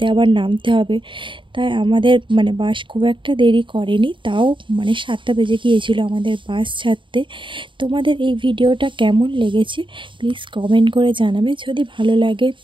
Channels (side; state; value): left; late; 0.24 ms